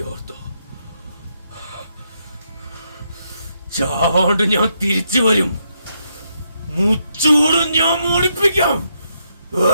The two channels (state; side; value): inverted; both; correlation -0.79